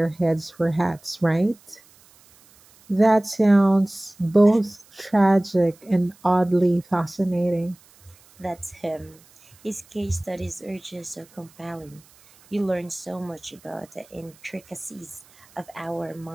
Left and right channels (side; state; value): right; noise; hiss, 28 dB below the sound